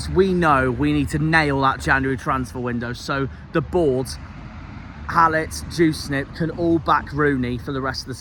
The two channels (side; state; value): both; identical; correlation 1.00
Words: we know we need to nail that January transfer window, so the board, Hallett, Juicenip can all back Rooney for the rest of the